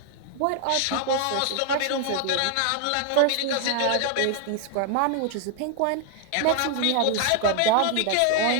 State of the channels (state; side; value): different; both; correlation 0.00